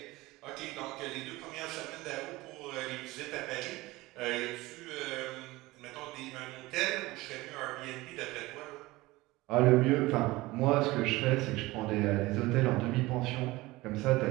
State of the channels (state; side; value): quieter; left; 20.1 dB